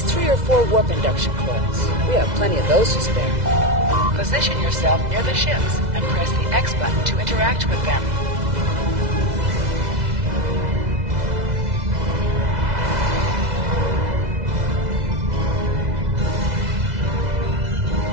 3 or 4 warp induction coils. We have plenty of those to spare. Position yourself near the ships and press the X button to interact with them.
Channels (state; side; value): late; left; 2.0 ms